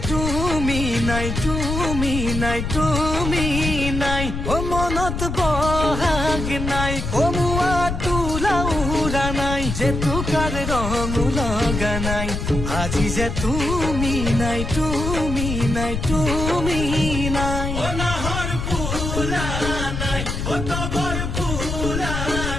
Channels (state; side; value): noise; left; rumble, 4 dB below the sound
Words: তুমি নাই, তুমি নাই, তুমি নাই। ও মনত বহাগ নাই, কমুৱা তোলা উৰা নাই, জেতুকাৰ ৰং লগা নাই। আজি যে তুমি নাই, তুমি নাই, তুমি নাই। ও নাহৰ ফুলা